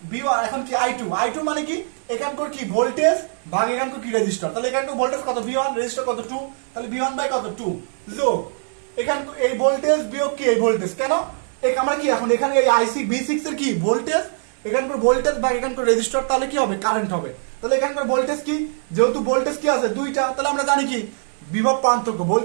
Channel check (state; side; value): silent; left; digital silence